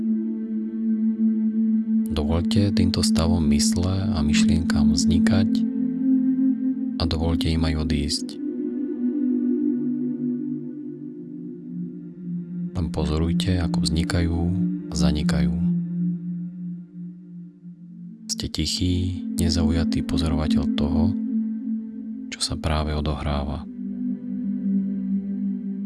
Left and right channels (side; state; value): both; identical; correlation 1.00